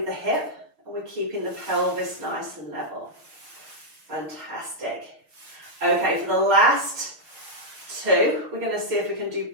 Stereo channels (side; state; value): left; late; 6.4 ms